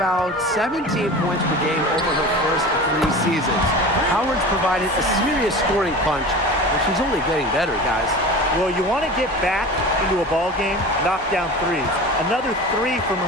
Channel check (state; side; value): normal; both; correlation 0.34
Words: 17 points per game over her first 3 seasons. Howard's provided a serious scoring punch, and she's only getting better, guys. Well, you want to get back into a ball game, knock down threes. Another 3 from